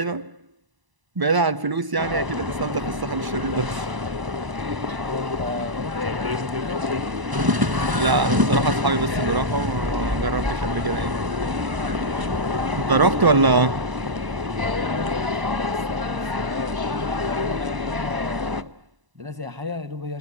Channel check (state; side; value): late; left; 1.0 ms